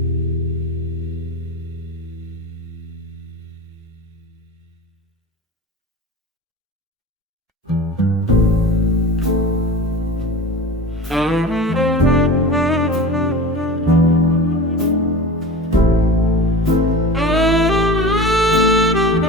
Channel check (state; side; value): normal; both; correlation 0.34